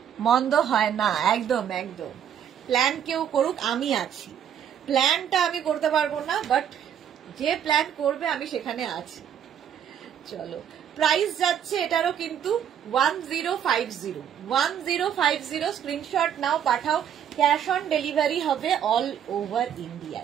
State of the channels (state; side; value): quieter; left; 9.1 dB